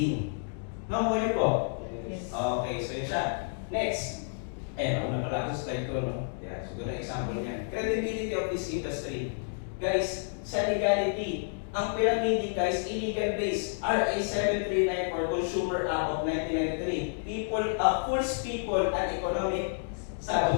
Nakuha nyo po? Yes. Okay, so yun siya. Next. Ako na pala sa slide ko, no? Yeah, so gano'n example niyan. Credibility of this industry. Guys, sa legality, ang pyramid guys, illegal base, RA 739 for Consumer Act of 1993. Fools people and economic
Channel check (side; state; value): right; silent; digital silence